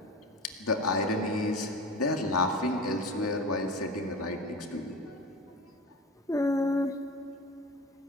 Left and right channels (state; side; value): normal; both; correlation 0.32